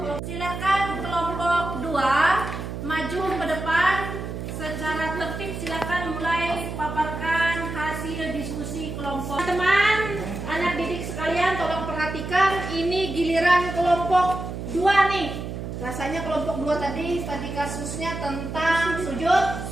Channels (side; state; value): right; noise; hum, 6 dB below the sound